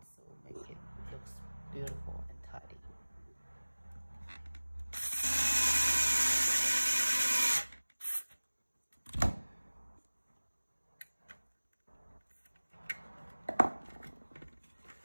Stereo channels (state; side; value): inverted; both; correlation -1.00